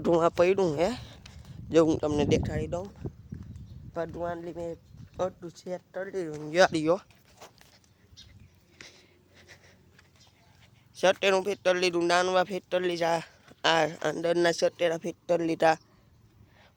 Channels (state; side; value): identical; both; correlation 1.00